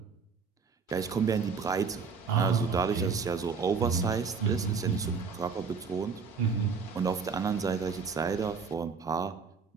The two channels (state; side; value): quieter; left; 5.4 dB